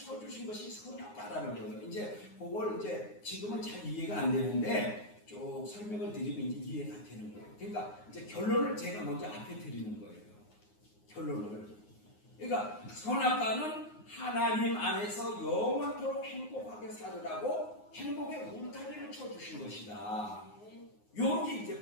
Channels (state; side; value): late; right; 9.6 ms